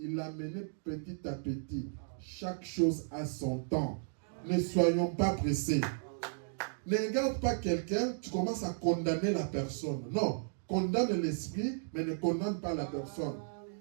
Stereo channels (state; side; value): silent; left; digital silence